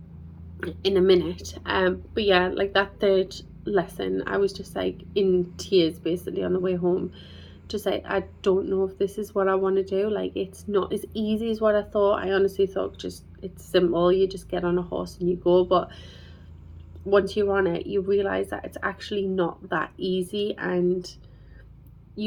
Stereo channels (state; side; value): identical; both; correlation 1.00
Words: in a minute. But yeah, like that third lesson, I was just like in tears basically on the way home. Just like, I don't know if this is what I want to do. Like, it's not as easy as what I thought. I honestly thought just it's simple. You just get on a horse and you go. But once you're on it, you realize that it's actually not that easy, and